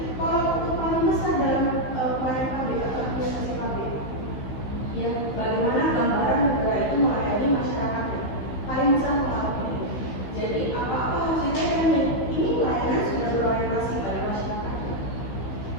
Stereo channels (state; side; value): late; right; 16 ms